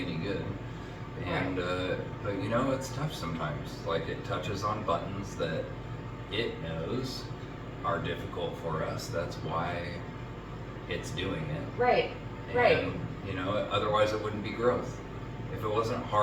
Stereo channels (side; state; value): both; identical; correlation 1.00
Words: any good. And, but you know, it's tough sometimes. Like, it touches on buttons that it knows are difficult for us. That's why it's doing it. Right. And, Right. you know, otherwise it wouldn't be growth. If it wasn't